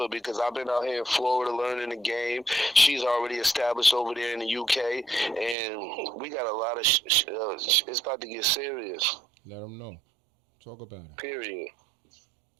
because I've been out here in Florida learning the game. She's already established over there in the UK, and we got a lot of. It's about to get serious. Let them know. Talk about it. Period.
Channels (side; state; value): left; drops out; at 5.6 s